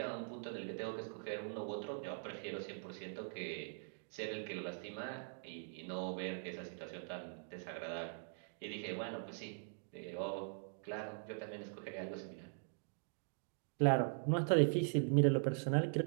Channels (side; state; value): left; silent; digital silence